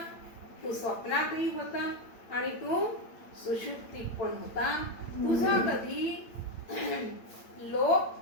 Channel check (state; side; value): late; right; 8.9 ms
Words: तू स्वप्नातही होता आणि तू सुषुप्तीत पण होता. तुझा कधी